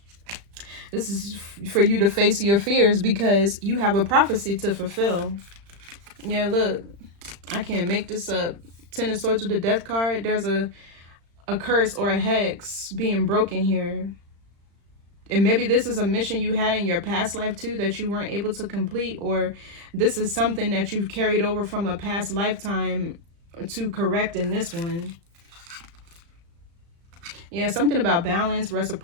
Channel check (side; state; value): left; late; 35 ms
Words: This is for you to face your fears because you have a prophecy to fulfill. Yeah, look, I can't make this up. Ten of Swords with the Death card. There's a curse or a hex being broken here. And maybe this is a mission you had in your past life too that you weren't able to complete, or this is something that you've carried over from a past lifetime to correct in this one. Yeah, something about balance,